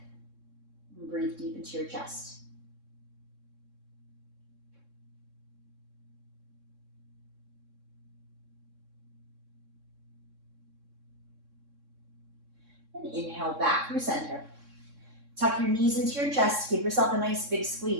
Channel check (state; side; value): late; left; 3.6 ms